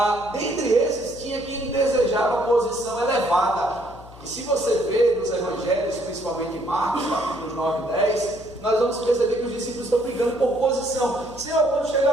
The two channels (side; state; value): left; noise; hum, 19 dB below the sound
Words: Dentre esses, tinha quem desejava posição elevada. E se você vê nos evangelhos, principalmente em Marcos, capítulos 9 e 10, nós vamos perceber que os discípulos estão brigando por posição. Senhor, quando